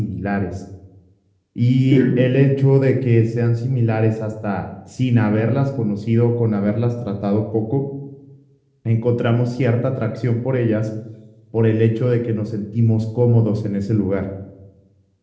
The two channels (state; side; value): identical; both; correlation 1.00